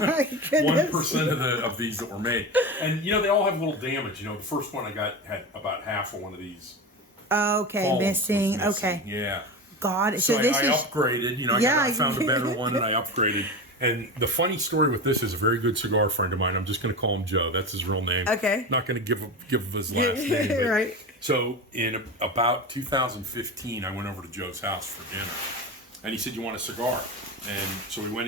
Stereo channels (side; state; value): both; normal; correlation 0.25